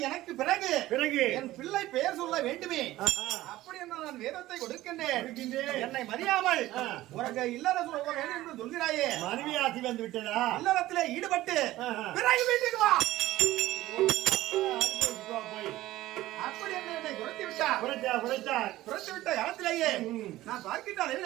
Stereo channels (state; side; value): quieter; left; 16.2 dB